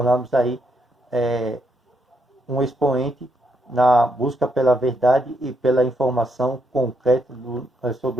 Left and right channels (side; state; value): both; normal; correlation 0.77